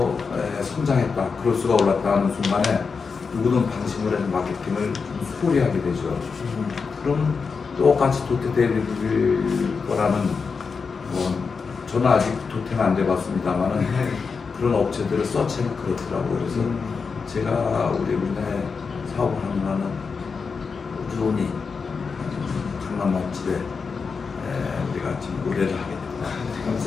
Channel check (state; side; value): quieter; right; 5.2 dB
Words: 성장했다, 그럴수가 올랐다 하는 순간에 누구든 방심을 해서 마케팅을 좀 소홀히 하게 되죠. 그럼 똑같이 도태될 거라는 저는 아직 도태는 안 돼봤습니다만은 그런 업체들을 서치하면 그렇더라고요. 그래서 제가 우리나라에 사업을 하는 한은 꾸준히 강남 맛집에 우리가 지금 의뢰를 하게 됩니다.